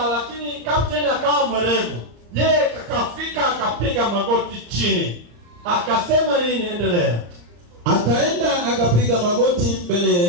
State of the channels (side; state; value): left; late; 34 ms